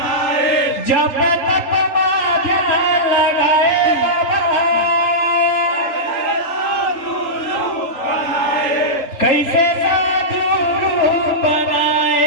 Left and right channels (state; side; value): late; right; 3.0 ms